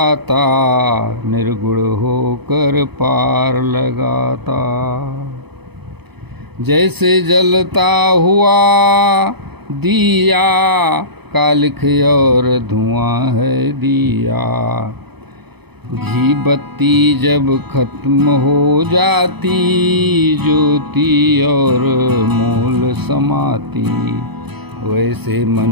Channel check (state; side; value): late; left; 0.98 ms